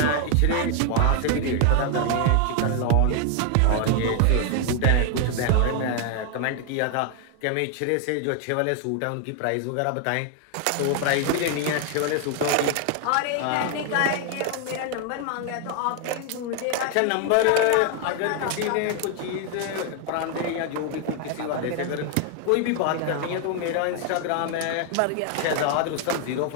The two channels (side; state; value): both; different; correlation 0.00